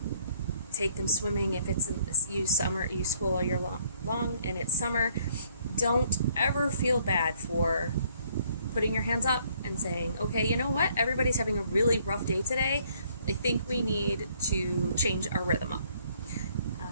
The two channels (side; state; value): both; inverted; correlation -0.65